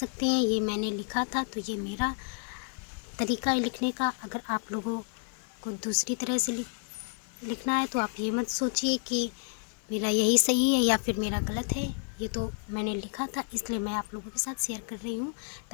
हैं। ये मैंने लिखा था तो ये मेरा तरीका है लिखने का। अगर आप लोगों को दूसरी तरह से लिखना है तो आप ये मत सोचिए कि मेरा यही सही है या फिर मेरा गलत है। ये तो मैंने लिखा था इसलिए मैं आप लोगों के साथ शेयर कर रही हूँ,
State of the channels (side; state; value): right; quieter; 39.3 dB